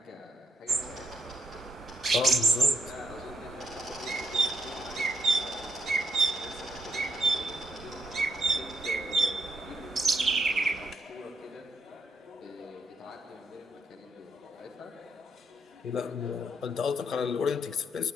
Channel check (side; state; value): both; normal; correlation 0.77